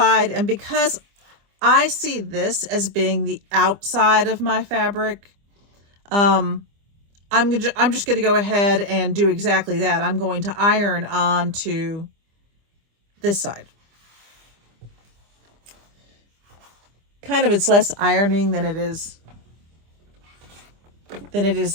and because I see this as being the outside of my fabric, I'm just going to go ahead and do exactly that. I'm going to iron onto this side. Kind of, it's less ironing than it is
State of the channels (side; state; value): left; late; 25 ms